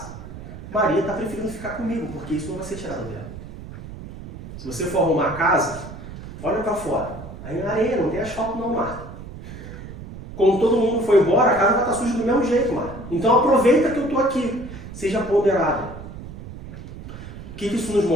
Maria está preferindo ficar comigo, porque isso não vai ser tirado dela. Se você for arrumar a casa, olha para fora. Aí na areia, não tem asfalto não, Marta. Quando todo mundo for embora, a casa vai estar suja do mesmo jeito, Marta. Então aproveita que eu estou aqui. Seja ponderada. O que isso nos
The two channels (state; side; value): noise; right; rumble, 12 dB below the sound